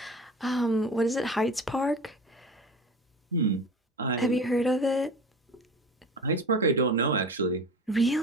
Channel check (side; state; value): both; normal; correlation 0.34